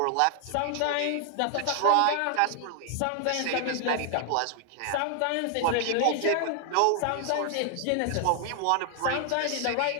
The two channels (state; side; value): different; both; correlation 0.00